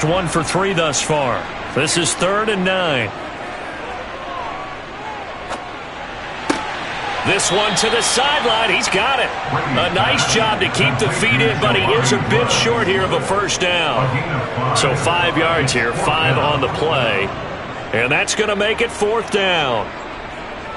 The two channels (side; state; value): both; identical; correlation 1.00